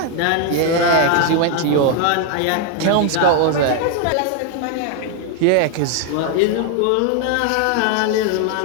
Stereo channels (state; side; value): different; both; correlation 0.00